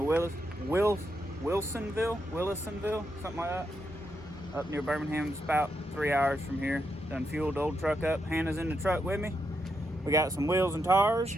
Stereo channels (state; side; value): normal; both; correlation 0.82